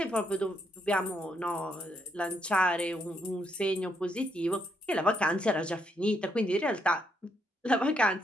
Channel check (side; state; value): both; normal; correlation 0.76